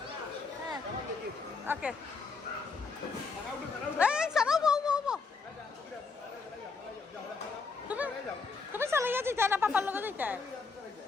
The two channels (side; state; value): right; quieter; 4.6 dB